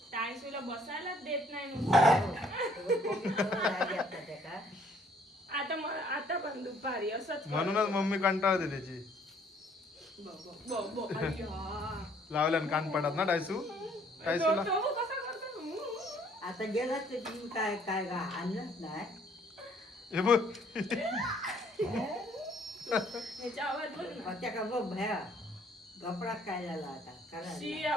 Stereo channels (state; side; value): normal; both; correlation 0.62